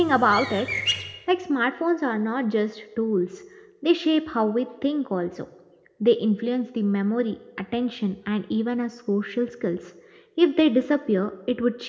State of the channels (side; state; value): both; identical; correlation 1.00